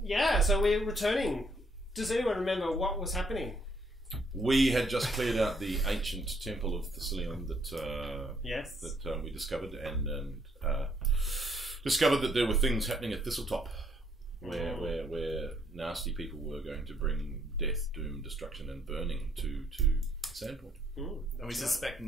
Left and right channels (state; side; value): normal; both; correlation 0.69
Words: Yeah. So we're returning. Does anyone remember what was happening? We had just cleared out the ancient temple of Thessalion that Yes. that we discovered, and discovered that there were things happening at Thistletop, where nasty people were going to bring death, doom, destruction, and burning to Sandpoint. And we suspect